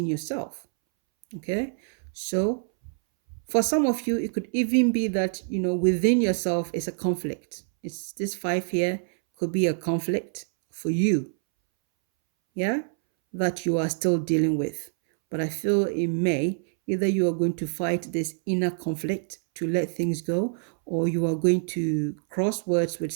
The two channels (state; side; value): silent; left; 61 dB below the other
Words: yourself. Okay, so for some of you, it could even be that, within yourself is a conflict. It's this five here could be a conflict for you, yeah, that you are still dealing with. But I feel in May, either you are going to fight this inner conflict to let things go, or you are going to cross words with